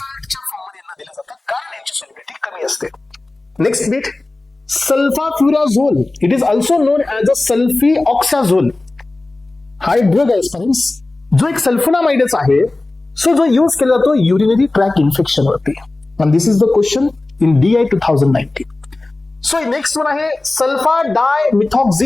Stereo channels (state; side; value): quieter; right; 3.0 dB